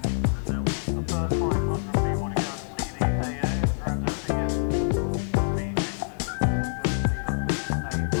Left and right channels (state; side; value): silent; right; 56 dB below the other